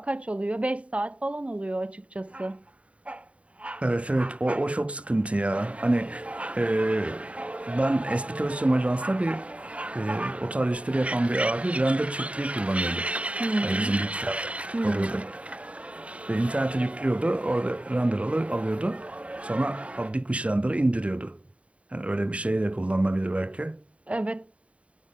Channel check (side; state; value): left; late; 0.064 ms